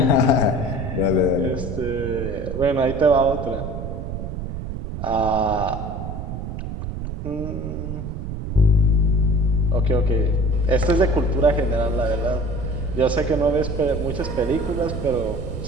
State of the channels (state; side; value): noise; right; rumble, 6 dB below the sound